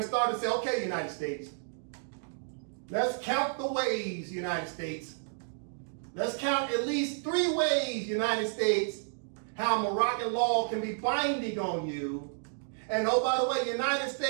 starting to say, okay, United States, let's count the ways, United States. Let's count at least 3 ways, United States, how Moroccan law can be binding on you. And oh, by the way, United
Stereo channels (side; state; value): left; silent; digital silence